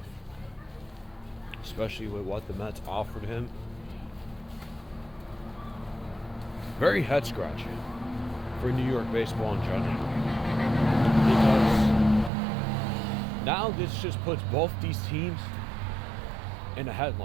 Especially with what the Mets offered him. Very head scratching for New York baseball in general. Because now this just puts both these teams in a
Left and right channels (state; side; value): drops out; left; at 12.3 s